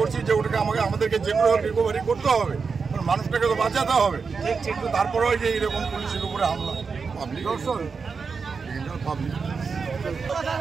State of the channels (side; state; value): left; quieter; 5.2 dB